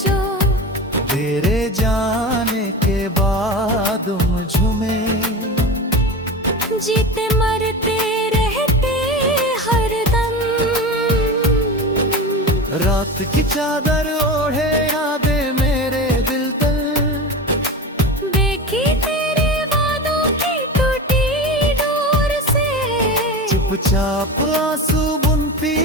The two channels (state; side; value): normal; both; correlation 0.27